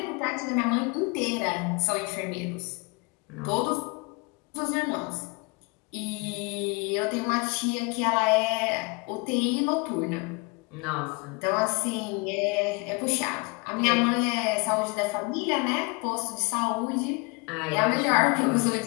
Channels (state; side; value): quieter; right; 29.3 dB